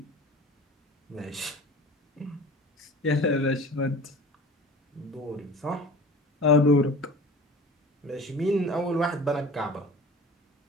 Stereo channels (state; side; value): normal; both; correlation 0.40